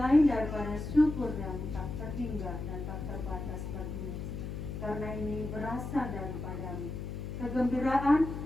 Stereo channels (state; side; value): noise; left; hum, 6 dB below the sound